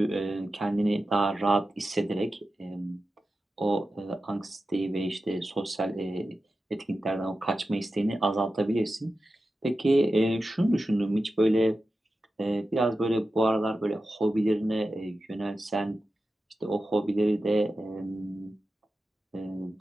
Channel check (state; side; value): normal; both; correlation 0.92